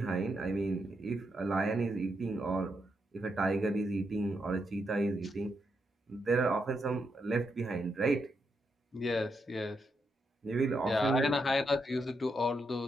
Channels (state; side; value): normal; both; correlation 0.82